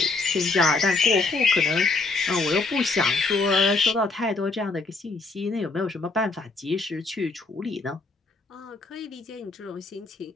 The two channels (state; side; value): quieter; right; 3.6 dB